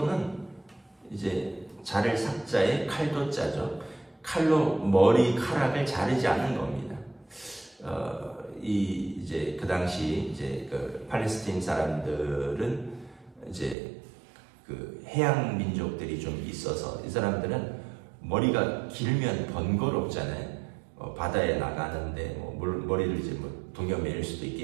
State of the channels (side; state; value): left; drops out; at 13.8 s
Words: 이제 자를 삭자에 칼도 짜죠. 칼로 머리카락을 자르지 않는 겁니다. 이제 그 당시 이제 그 팔레스타인 사람들은 이제 그 해양 민족들이 좀 있어서 이 사람들은 머리가 길면 번거롭잖아요. 바다에 나가는데 뭐 머리를 이제 뭐 동여매일 수도